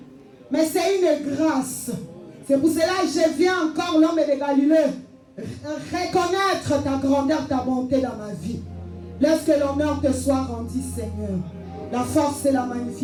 mais c'est une grâce. C'est pour cela que je viens encore, l'homme de Galilée, reconnaître ta grandeur, ta bonté dans ma vie. Laisse que l'honneur te soit rendu, Seigneur. La force et la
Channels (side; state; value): both; identical; correlation 1.00